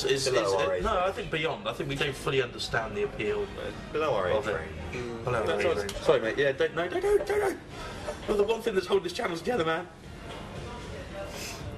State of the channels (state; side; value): identical; both; correlation 1.00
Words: our age no, range. I think beyond. I think we don't fully understand the appeal Below our age of it. range. Below our That's age what- range. Sorry, mate. Yeah, don't. Well, the one thing that's holding this channel together, man.